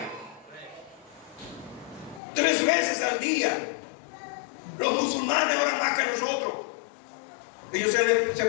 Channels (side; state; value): right; drops out; at 2.2 s